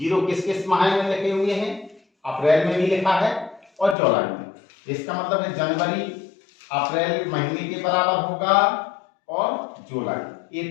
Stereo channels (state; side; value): drops out; right; at 4.0 s